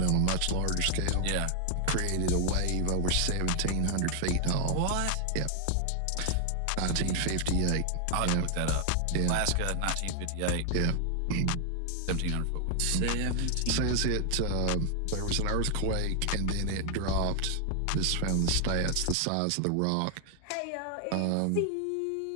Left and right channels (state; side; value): different; both; correlation 0.00